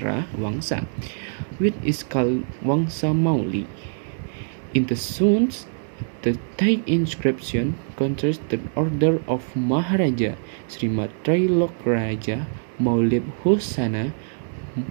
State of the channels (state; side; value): silent; left; digital silence